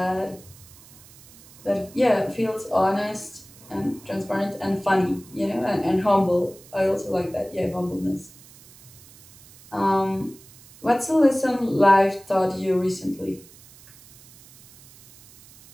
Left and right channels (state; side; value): noise; right; hiss, 23 dB below the sound